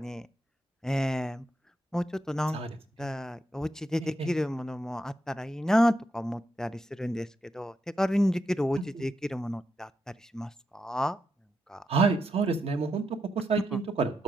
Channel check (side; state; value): both; normal; correlation 0.84